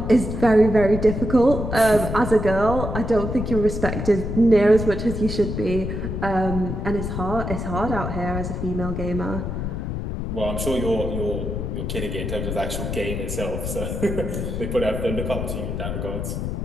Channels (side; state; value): left; noise; rumble, 4 dB below the sound